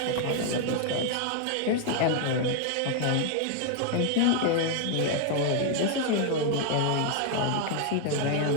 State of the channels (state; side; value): different; both; correlation 0.00